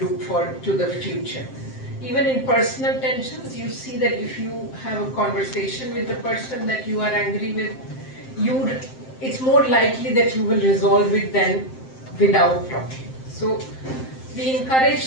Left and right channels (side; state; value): right; late; 7.7 ms